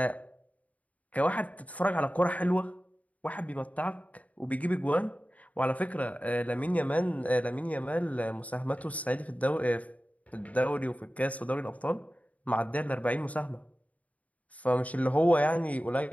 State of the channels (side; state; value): right; late; 0.070 ms